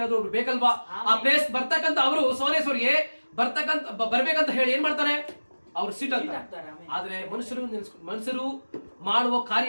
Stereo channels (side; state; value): both; inverted; correlation -1.00